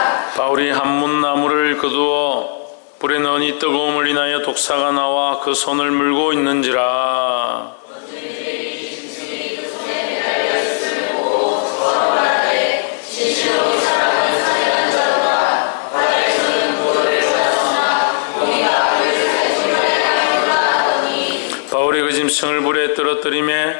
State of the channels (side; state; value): right; silent; digital silence